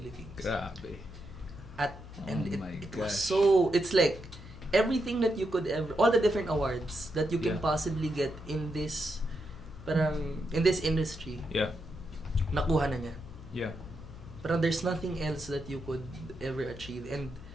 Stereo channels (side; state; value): left; noise; hum, 15 dB below the sound